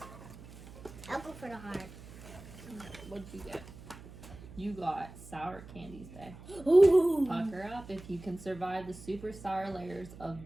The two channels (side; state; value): right; noise; hum, 16 dB below the sound